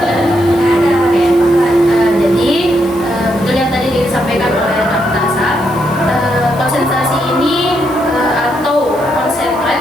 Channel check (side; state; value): left; noise; hiss, 22 dB below the sound